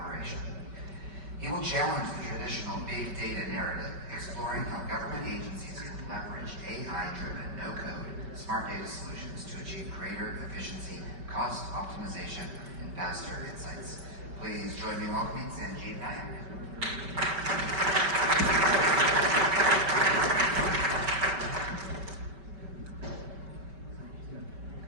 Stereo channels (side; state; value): left; late; 5.2 ms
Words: He will challenge the traditional big data narrative, exploring how government agencies can leverage AI-driven no-code smart data solutions to achieve greater efficiency, cost optimization, and faster insights. Please join me in welcoming Sanjib Nayak.